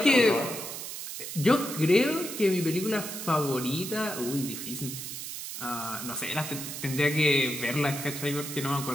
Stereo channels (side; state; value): right; noise; hiss, 7 dB below the sound